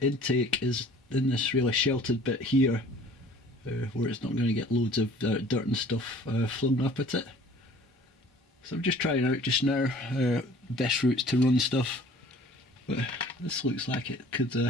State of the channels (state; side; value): normal; both; correlation 0.50